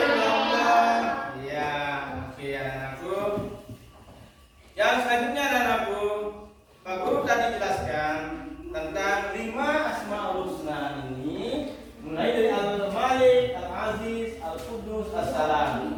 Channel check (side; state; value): both; identical; correlation 1.00